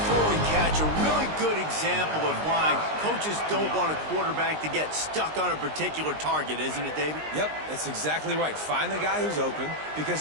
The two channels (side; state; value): left; late; 19 ms